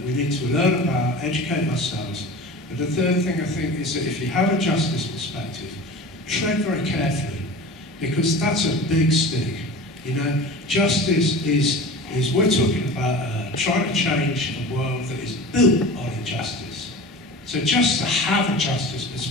we need to learn about, educate ourselves. But the third thing I think is that if you have a justice perspective, tread very carefully, because that's a big stick. You know, justice is we're talking about trying to change a world that is built on injustice. So just to have a justice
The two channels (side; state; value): both; normal; correlation 0.35